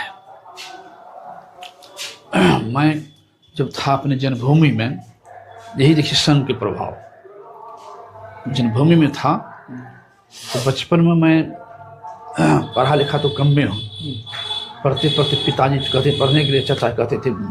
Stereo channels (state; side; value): identical; both; correlation 1.00